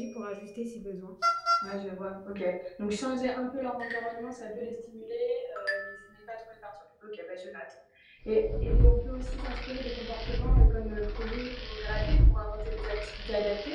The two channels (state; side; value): identical; both; correlation 1.00